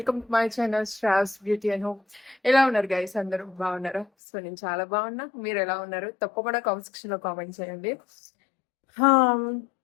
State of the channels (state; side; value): drops out; right; at 4.0 s